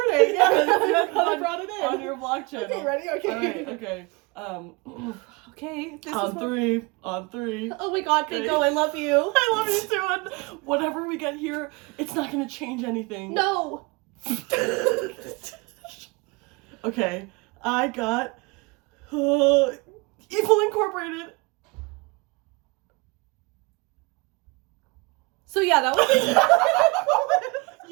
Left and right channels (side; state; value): left; quieter; 26.6 dB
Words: Yeah, I brought it in on your vlog channel. Okay, ready? Okay. All right. Okay. Okay. This on is three. On three. Oh my God, Okay. Bingo, I love you. I love you too. And whatever we get here, it's not gonna change anything. No. Okay, I got Evil Incorporated. So yeah, that was.